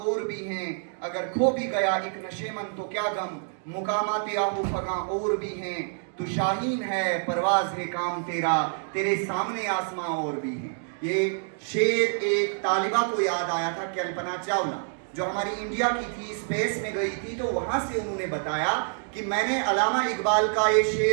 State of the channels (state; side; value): silent; left; 60 dB below the other